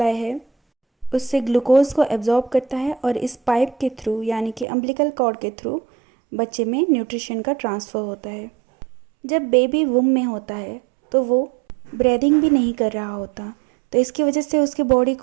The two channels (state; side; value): drops out; left; at 4.7 s